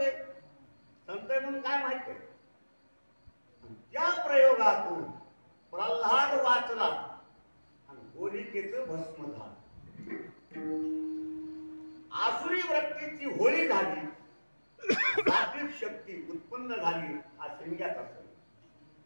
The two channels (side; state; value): both; inverted; correlation -1.00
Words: आहे, संत आहे म्हणून काय माहित आहे. त्या प्रयोगातून प्रल्हाद वाचला आणि होलिकेचं भस्म झालं. आसुरी वृत्तीची होळी झाली, सात्विक शक्ती उत्पन्न झाली. हा शिमग्याचा सण.